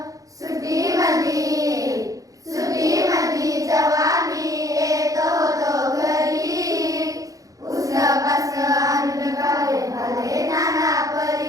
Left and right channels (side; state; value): left; late; 0.17 ms